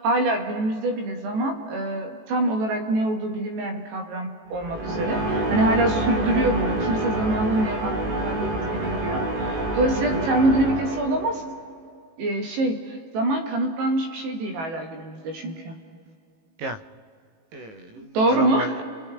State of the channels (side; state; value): left; late; 18 ms